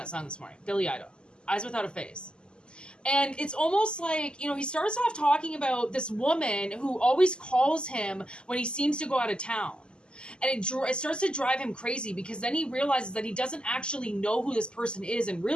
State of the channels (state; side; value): late; right; 0.049 ms